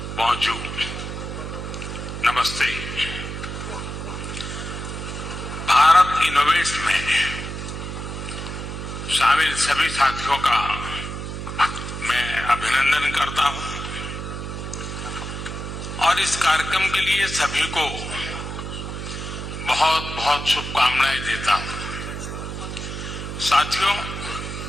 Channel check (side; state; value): right; noise; hum, 6 dB below the sound